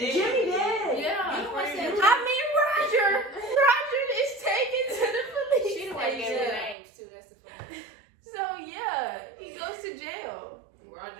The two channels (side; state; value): left; drops out; at 6.8 s